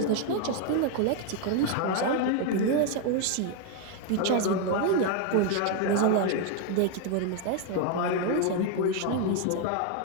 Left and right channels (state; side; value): different; both; correlation 0.01